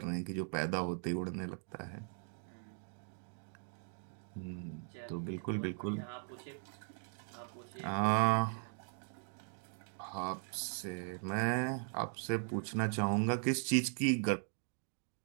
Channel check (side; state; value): left; silent; 52 dB below the other